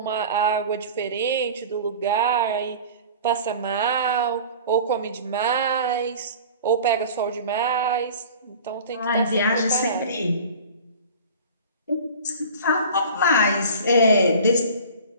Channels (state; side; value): inverted; both; correlation -0.41